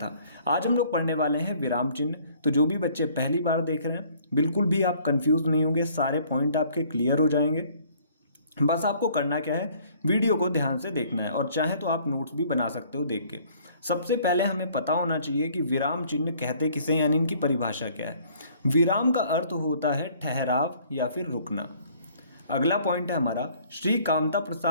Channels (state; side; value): inverted; both; correlation -0.58